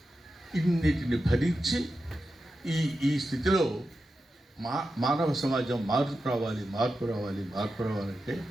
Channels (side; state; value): both; normal; correlation 0.90